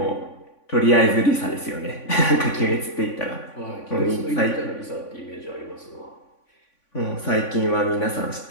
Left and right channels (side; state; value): right; late; 3.5 ms